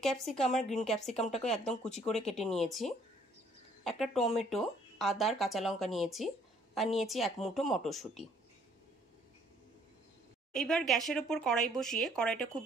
ক্যাপসিকাম আর গ্রিন ক্যাপসিকামটাকে একদম কুচি করে কেটে নিয়েছি। একটা টমেটো, আদা আর কাঁচা লঙ্কা নিয়েছি, আর নিয়েছি এক মুঠো মটরশুঁটি। এইবার গ্যাসের ওপর কড়াই বসিয়ে কড়াইটা খুব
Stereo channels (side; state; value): both; normal; correlation 0.62